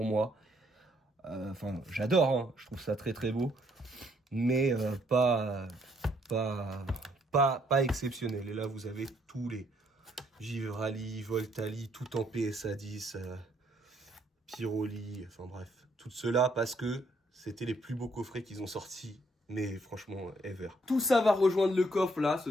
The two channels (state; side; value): normal; both; correlation 0.69